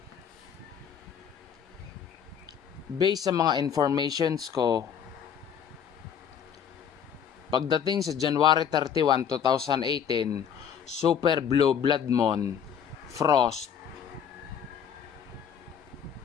Based sa mga informations ko, pagdating sa January 31, 2018, Super Blue Blood Moon, Frost,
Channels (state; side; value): quieter; right; 8.1 dB